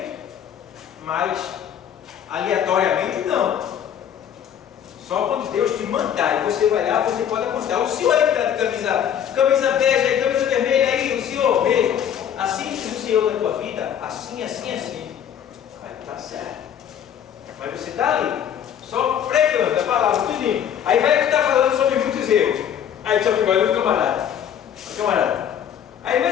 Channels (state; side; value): quieter; right; 9.2 dB